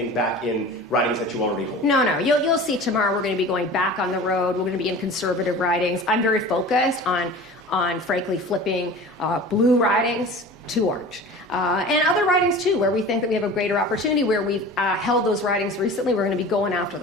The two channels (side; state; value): both; normal; correlation 0.38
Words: back in ridings that you already hold? No. You'll see tomorrow we're going to be going back on the road. We're going to be in conservative ridings. I'm very focused on frankly flipping blue ridings to orange. And other ridings too, where we think that we have a greater opportunity, where we've held those ridings recently, we're going to be going after